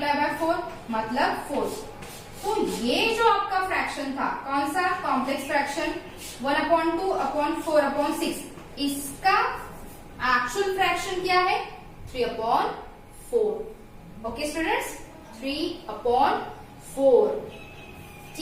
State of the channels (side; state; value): both; identical; correlation 1.00